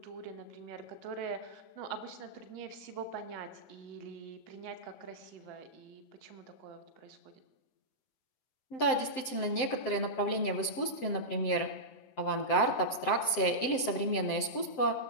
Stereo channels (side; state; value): right; late; 7.7 ms